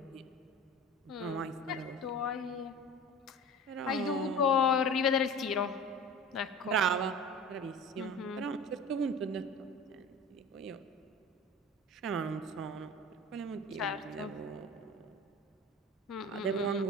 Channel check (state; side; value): normal; both; correlation 0.37